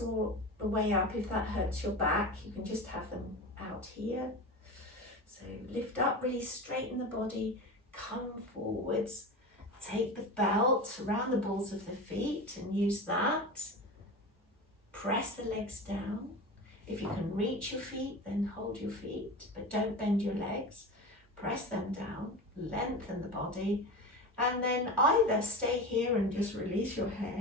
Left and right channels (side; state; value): both; normal; correlation 0.28